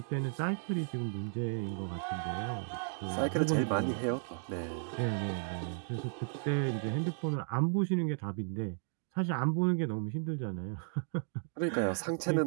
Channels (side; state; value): left; silent; 55 dB below the other